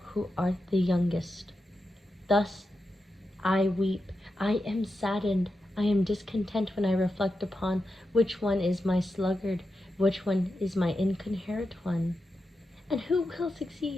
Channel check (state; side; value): normal; both; correlation 0.88